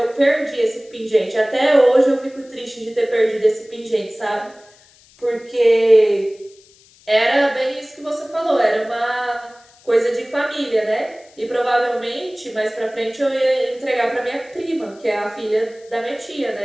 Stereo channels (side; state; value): left; noise; hiss, 28 dB below the sound